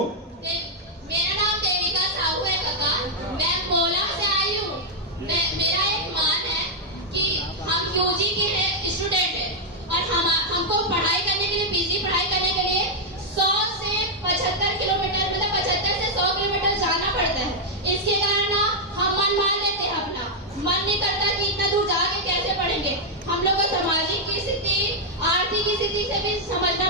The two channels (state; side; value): normal; both; correlation -0.02